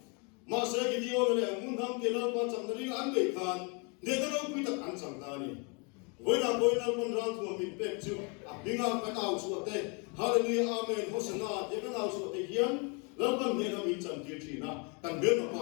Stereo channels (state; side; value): quieter; right; 33.2 dB